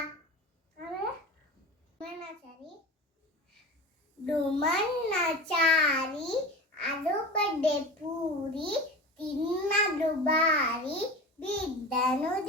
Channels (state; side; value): normal; both; correlation 0.31